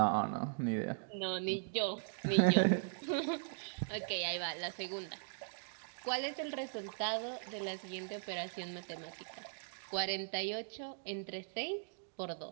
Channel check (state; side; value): silent; left; digital silence